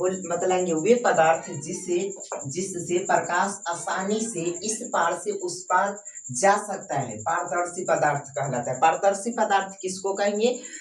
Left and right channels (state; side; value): identical; both; correlation 1.00